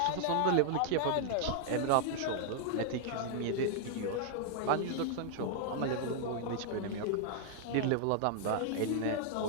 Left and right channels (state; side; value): different; both; correlation -0.01